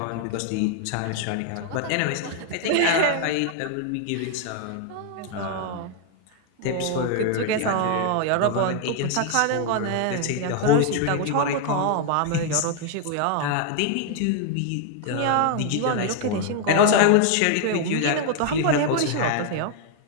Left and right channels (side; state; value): both; different; correlation 0.00